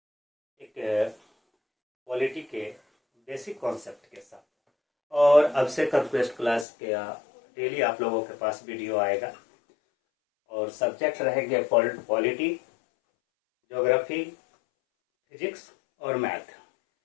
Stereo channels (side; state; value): right; drops out; at 6.7 s